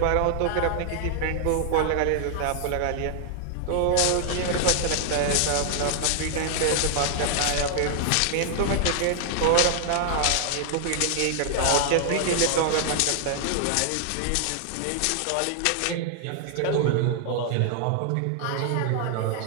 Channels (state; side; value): different; both; correlation 0.00